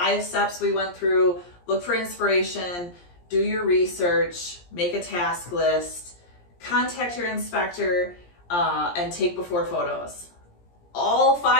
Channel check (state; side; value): late; right; 17 ms